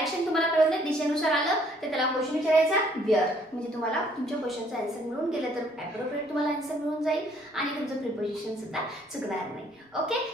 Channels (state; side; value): normal; both; correlation 0.63